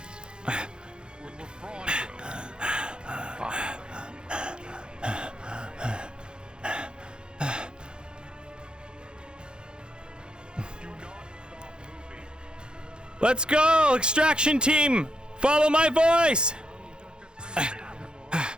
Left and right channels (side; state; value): left; late; 0.049 ms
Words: Let's go, extraction team! Follow my voice!